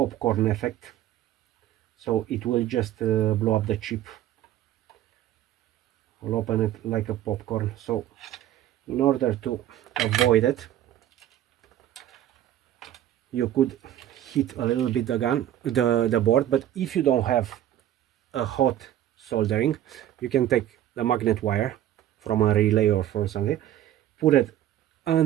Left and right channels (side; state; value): left; quieter; 12.2 dB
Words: effect. So it will just blow up the chip. I'll open it like a popcorn. So in order to avoid it, you could heat a little bit the board, but if you don't have a hot soldering, you can take the magnet wire from a relay or from something, put it